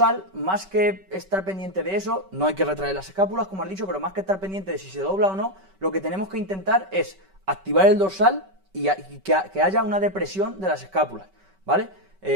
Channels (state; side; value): late; left; 5.2 ms